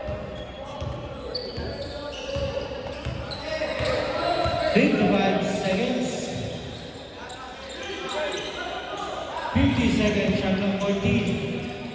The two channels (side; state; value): both; identical; correlation 1.00